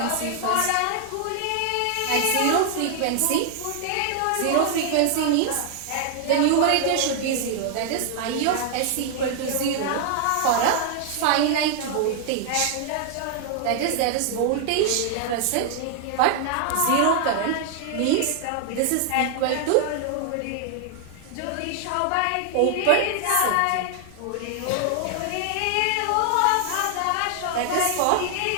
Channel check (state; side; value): different; both; correlation 0.00